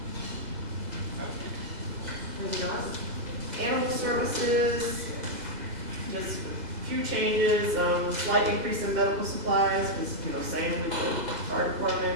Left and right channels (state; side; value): late; left; 2.0 ms